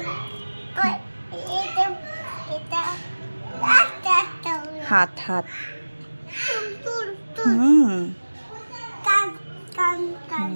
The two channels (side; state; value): both; inverted; correlation -1.00